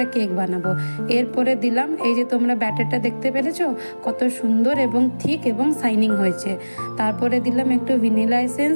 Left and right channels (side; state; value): both; inverted; correlation -1.00